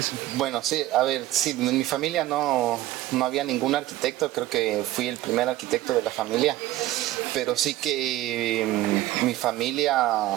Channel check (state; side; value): quieter; left; 15.4 dB